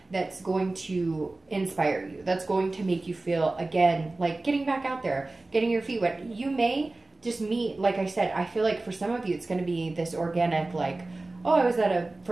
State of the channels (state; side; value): quieter; left; 3.1 dB